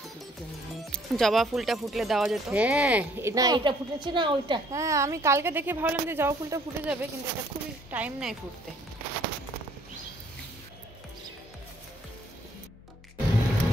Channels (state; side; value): normal; both; correlation 0.61